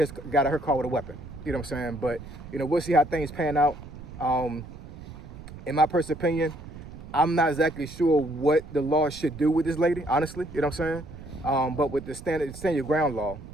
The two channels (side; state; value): right; noise; rumble, 14 dB below the sound